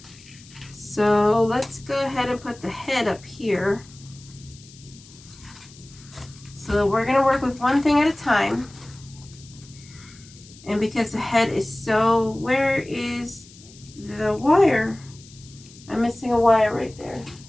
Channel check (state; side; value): noise; left; hiss, 22 dB below the sound